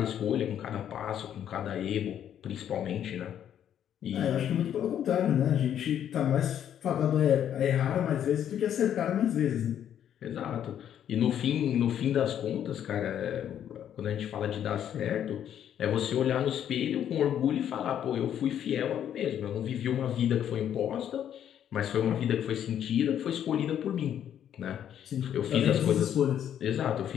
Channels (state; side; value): quieter; right; 9.9 dB